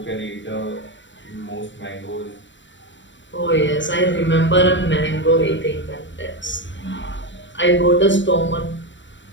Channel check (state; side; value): late; right; 0.54 ms